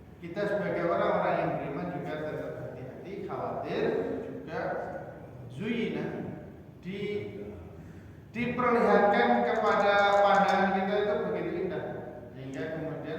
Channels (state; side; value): identical; both; correlation 1.00